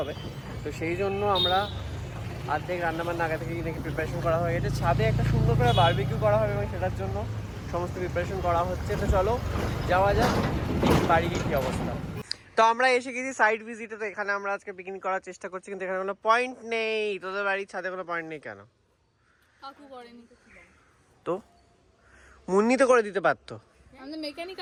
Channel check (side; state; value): both; identical; correlation 1.00